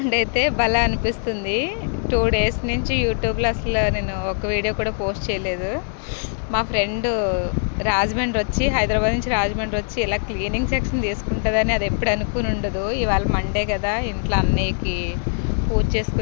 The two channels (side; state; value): right; silent; 64 dB below the other